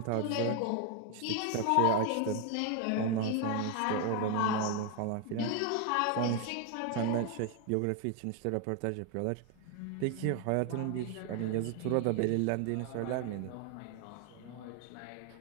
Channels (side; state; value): both; different; correlation 0.01